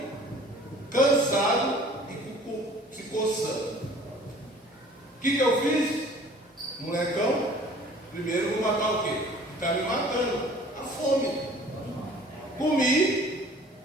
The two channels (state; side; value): normal; both; correlation 0.50